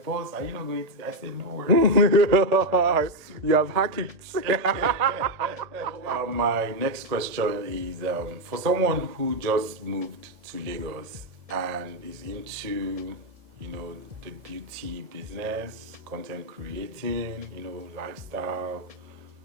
boss, are you not going to? I said, no worries. You have hacked it. My next question is for someone who just moved to Lagos and is into, you know, the beauty business, content creating, you know, lifestyle,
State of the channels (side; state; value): left; late; 1.8 ms